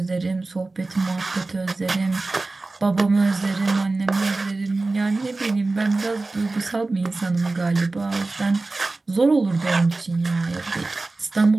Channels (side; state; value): left; quieter; 3.3 dB